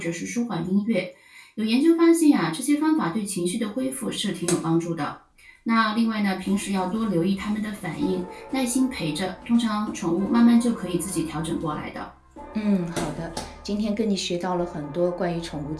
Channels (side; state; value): both; identical; correlation 1.00